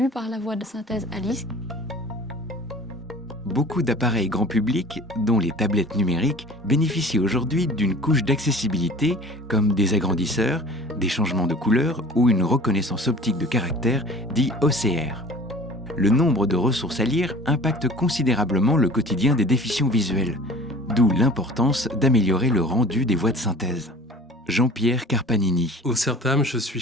par la voix de synthèse Alice. Beaucoup d'appareils grand public, dont les tablettes numériques, bénéficient aujourd'hui d'une couche d'accessibilité comme des agrandisseurs, des changements de couleur ou une reconnaissance optique de caractère, dit OCR. Le nombre de ressources à lire impacte considérablement le quotidien des déficients visuels, d'où l'importance d'améliorer le rendu des voix de synthèse. Jean-Pierre Carpanini. Au CERTAM, je suis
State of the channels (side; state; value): both; normal; correlation 0.43